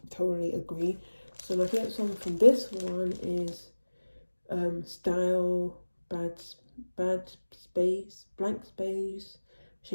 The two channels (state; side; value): inverted; both; correlation -1.00